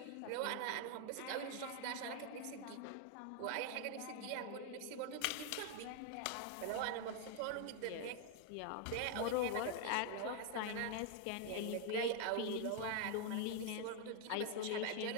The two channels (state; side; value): different; both; correlation 0.00